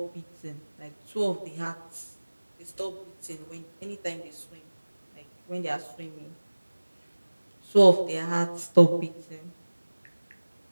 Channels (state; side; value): inverted; both; correlation -1.00